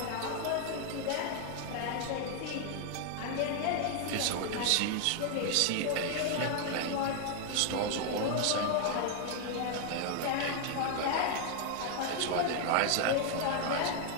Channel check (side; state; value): both; different; correlation 0.00